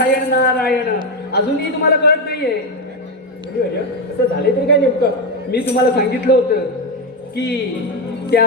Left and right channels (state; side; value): normal; both; correlation 0.08